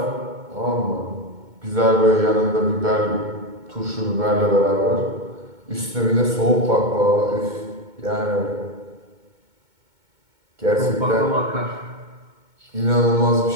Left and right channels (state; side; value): late; left; 2.2 ms